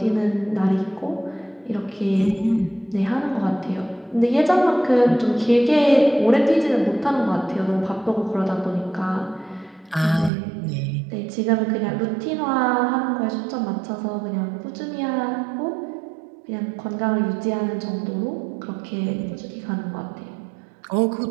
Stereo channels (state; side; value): drops out; left; at 10.3 s